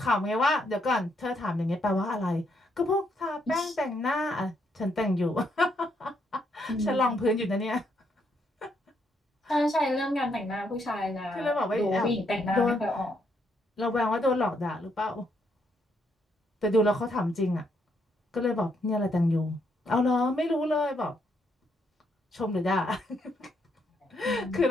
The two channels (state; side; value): normal; both; correlation 0.75